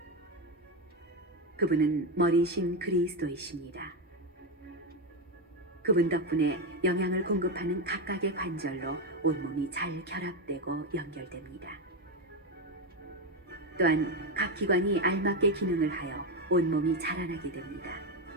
그분은 머리이신 그리스도이십니다. 그분 덕분에 영양을 공급하는 각각의 관절로 온몸이 잘 결합되고 연결됩니다. 또한 각 기관이 알맞게 기능을 하여 온몸이 자라나게 됩니다.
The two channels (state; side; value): normal; both; correlation 0.10